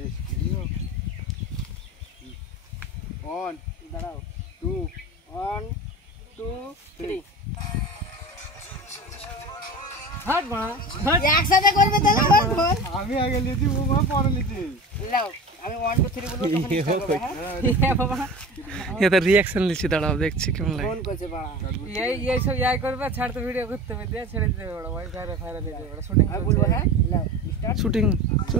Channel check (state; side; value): normal; both; correlation 0.34